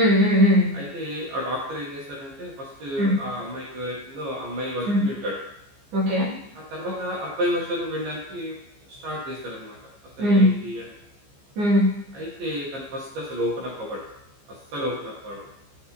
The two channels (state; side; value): late; left; 15 ms